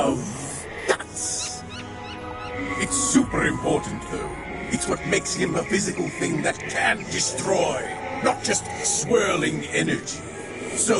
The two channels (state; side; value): identical; both; correlation 1.00